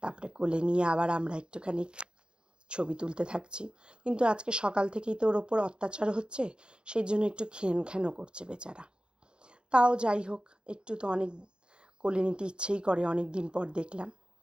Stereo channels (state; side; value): late; left; 0.054 ms